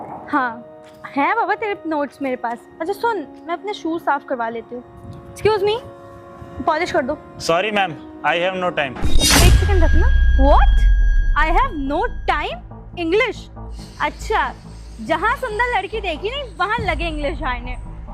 हाँ है बाबा तेरे नोट्स मेरे पास। अच्छा सुन, मैं अपने शूज साफ करवा लेती हूँ। एक्सक्यूज मी, पॉलिश कर दो। Sorry ma'am, I have no time. एक सेकंड रखना। What? I have no time? English? अच्छा, जहाँ सुंदर लड़की देखी नहीं वहाँ लगे इंग्लिश आने।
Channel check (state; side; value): identical; both; correlation 1.00